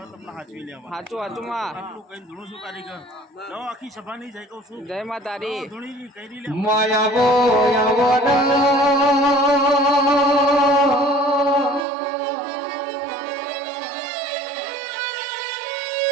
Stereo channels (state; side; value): drops out; left; at 11.9 s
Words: તમને હાચવી લેવા આટલું કઈ ધૂણું છું કારીગર લો આખી સભાની જય કહું છું જય માતારી માયાવો